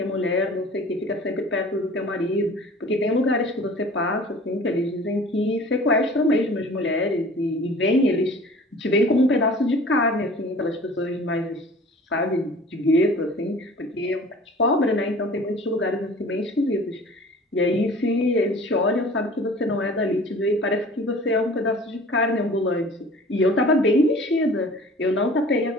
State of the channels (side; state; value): both; normal; correlation 0.45